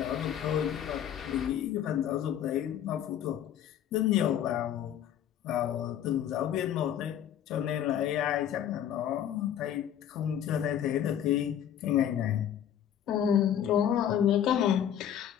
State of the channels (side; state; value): right; quieter; 10.1 dB